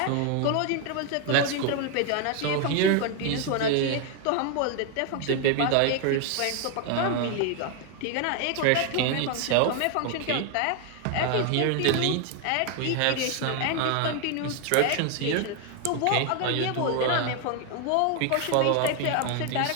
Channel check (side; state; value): both; different; correlation 0.01